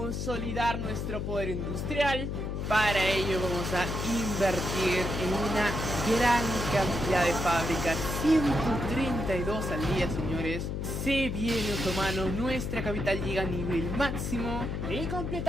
nuestro poder industrial. Para ello vamos a invertir en una gran cantidad de fábricas. 132 al día, señores. Se viene, otomano, nuestra capital llega a nivel máximo. Y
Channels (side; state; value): left; noise; hum, 3 dB below the sound